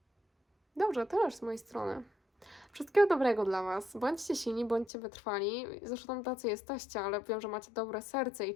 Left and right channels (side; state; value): right; drops out; at 4.9 s